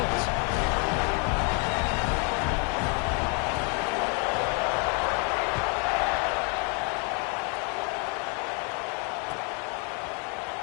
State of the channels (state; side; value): quieter; right; 34.1 dB